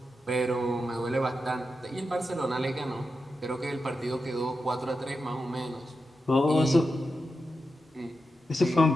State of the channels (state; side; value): normal; both; correlation 0.89